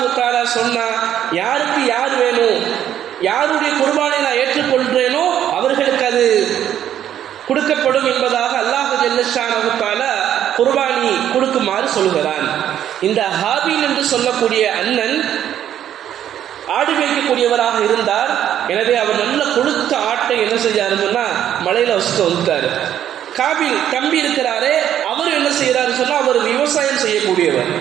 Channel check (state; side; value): quieter; left; 10.6 dB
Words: தஆலா சொன்னா, யாருக்கு யார் வேணும், யாருடைய குர்பானை நான் ஏற்றுக்கொள்கிறேனோ அவர்களுக்கு அது கொடுக்கப்படும் என்பதாக அல்லாஹ் ஜல்ல ஷானஹு தஆலா குர்பானி கொடுக்குமாறு சொல்கிறான். இந்த ஹாபில் என்று சொல்லக்கூடிய அண்ணன் ஆடு மேய்க்கக்கூடியவராக இருந்தார். எனவே அவர் நல்ல கொழுத்த ஆட்டை என்ன செஞ்சாருன்னா மலையில வச்சுட்டு வந்துட்டாரு. காபில் தம்பி இருக்கிறாரே அவர் என்ன செய்யறாரு சொன்னா, அவர் விவசாயம் செய்யக்கூடியவர்.